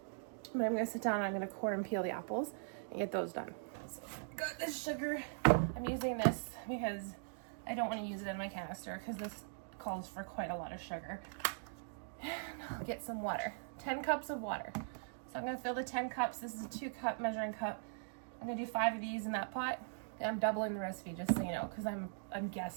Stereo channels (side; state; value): left; silent; digital silence